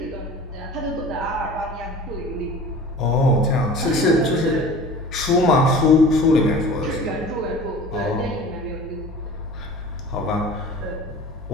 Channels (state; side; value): normal; both; correlation 0.41